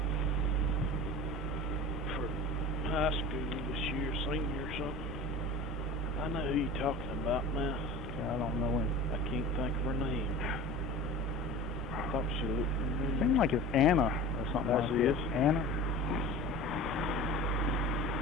for high school this year, senior or something. I know who you're talking about now. I don't know him. I can't think of her name. I thought she looked familiar. Seems like it's Anna or something like That's that. Anna?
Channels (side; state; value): both; normal; correlation 0.35